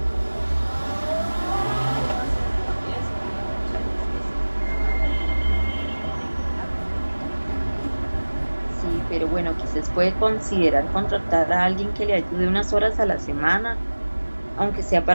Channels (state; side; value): inverted; both; correlation -1.00